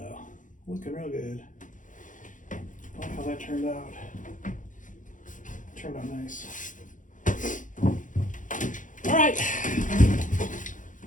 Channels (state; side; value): late; right; 0.37 ms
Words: Looking real good. I like how that turned out. Turned out nice. All right.